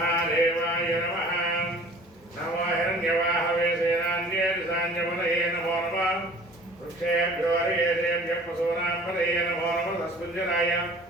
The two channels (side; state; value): both; normal; correlation 0.48